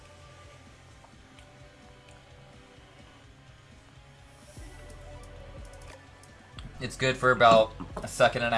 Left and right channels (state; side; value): identical; both; correlation 1.00